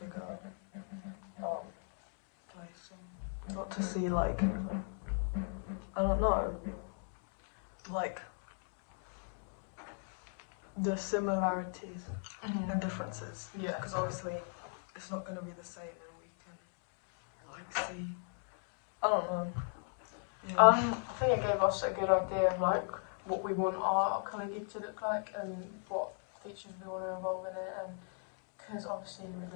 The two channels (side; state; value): right; silent; 53 dB below the other